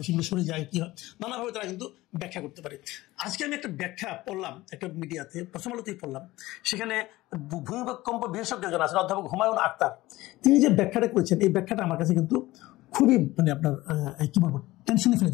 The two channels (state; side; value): quieter; right; 18.3 dB